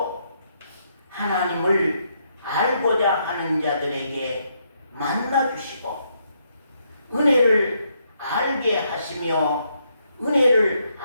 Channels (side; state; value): both; inverted; correlation -0.76